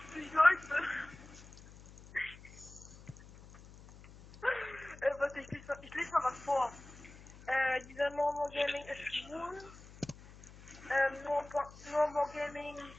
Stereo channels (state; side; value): noise; left; hum, 19 dB below the sound